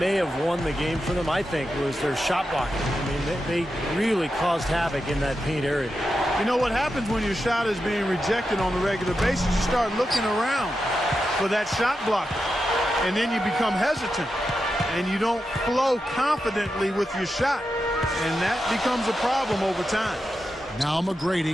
have won the game for them, I think, was their shot blocking. I mean, they really caused havoc in that paint area. You know what happens when your shot is being rejected on a regular basis? You start looking around for that shot blocker, and then you become hesitant, and you don't flow confidently with your shot, and that becomes a problem over time. Now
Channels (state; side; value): normal; both; correlation 0.89